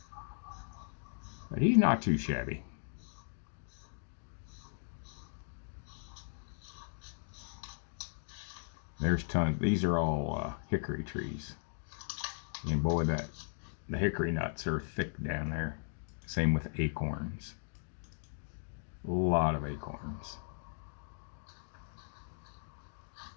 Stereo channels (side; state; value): right; silent; digital silence